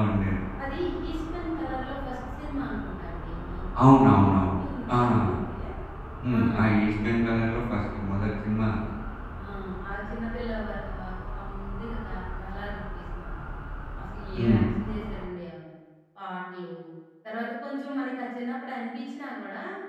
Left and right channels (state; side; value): identical; both; correlation 1.00